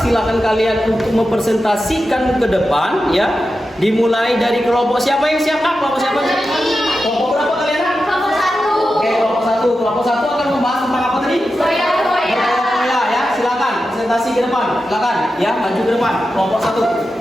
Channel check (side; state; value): both; normal; correlation 0.91